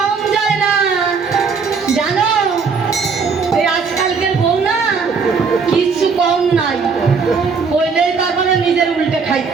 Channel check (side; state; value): left; quieter; 5.2 dB